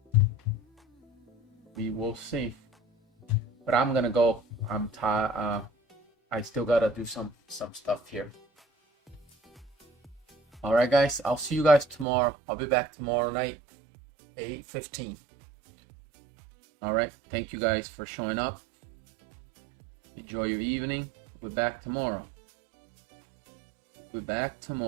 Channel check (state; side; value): drops out; left; at 12.1 s